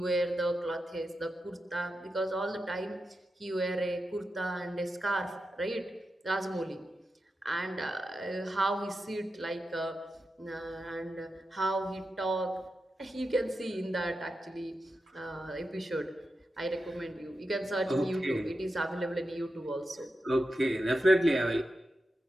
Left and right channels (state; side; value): normal; both; correlation 0.89